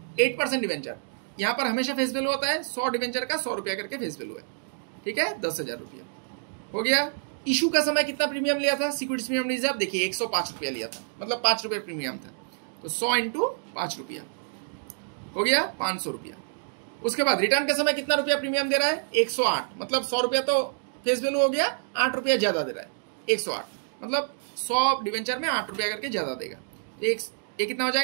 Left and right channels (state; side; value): silent; left; digital silence